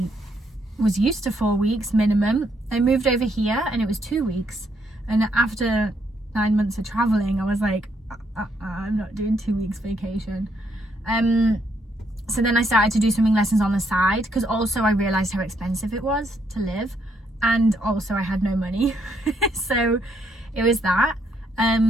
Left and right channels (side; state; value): both; normal; correlation 0.74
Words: was used to 4 weeks minimum. I moved over here and it was 2 weeks, and after 9 months of traveling I was like, I'm not doing 2 weeks vacation. So then I started to do swimming lessons on the side, because also I realized how expensive it was to live, and also I had no money. So it was that,